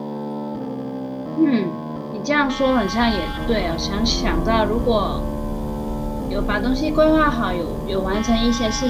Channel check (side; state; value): both; identical; correlation 1.00